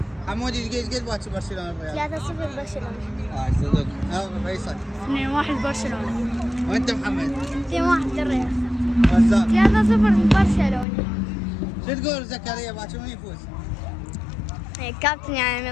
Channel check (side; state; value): right; drops out; at 10.9 s